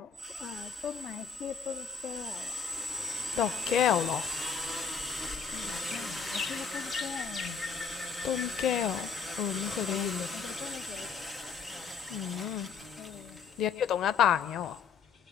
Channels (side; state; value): right; quieter; 6.1 dB